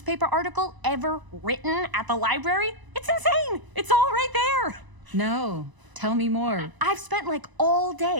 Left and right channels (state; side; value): late; left; 1.0 ms